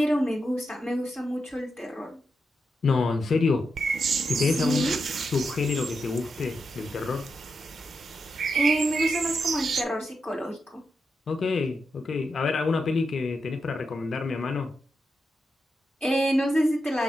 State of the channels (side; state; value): both; normal; correlation 0.86